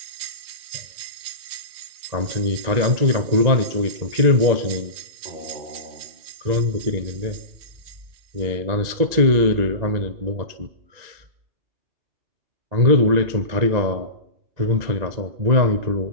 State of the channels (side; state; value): left; late; 1.9 ms